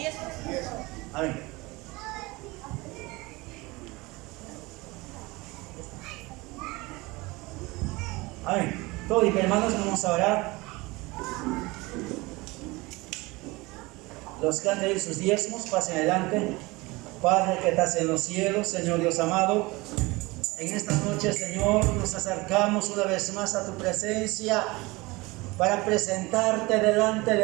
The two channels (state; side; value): quieter; left; 22.9 dB